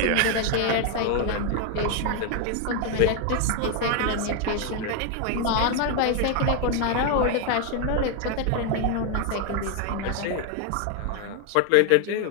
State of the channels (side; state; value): both; different; correlation 0.01